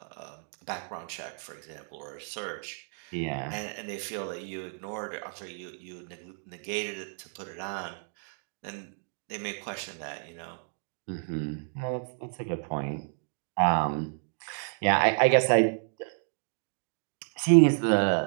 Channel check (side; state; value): left; silent; 57 dB below the other